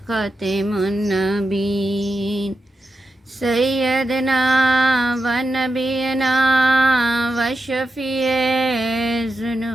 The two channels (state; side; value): normal; both; correlation 0.88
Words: النبیین سیدنا و نبینا و شفیع